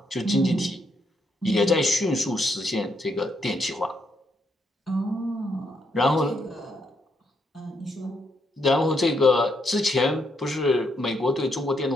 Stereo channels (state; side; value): normal; both; correlation 0.77